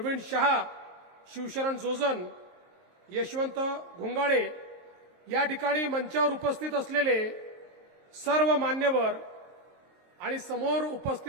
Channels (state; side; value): late; left; 23 ms